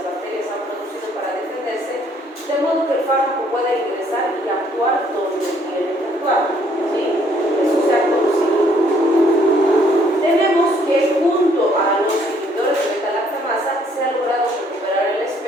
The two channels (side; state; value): both; normal; correlation 0.65